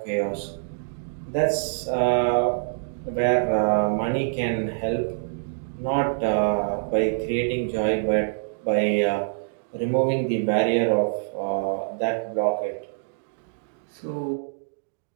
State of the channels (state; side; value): silent; left; digital silence